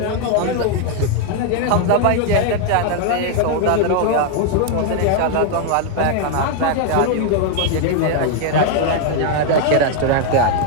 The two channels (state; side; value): different; both; correlation 0.00